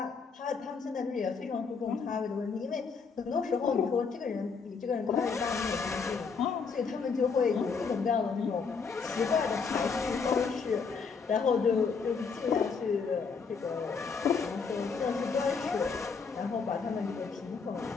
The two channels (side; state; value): right; quieter; 5.3 dB